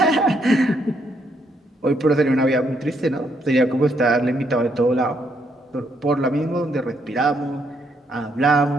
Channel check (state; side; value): normal; both; correlation 0.74